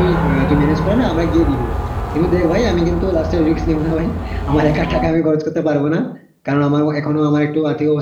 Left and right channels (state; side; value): identical; both; correlation 1.00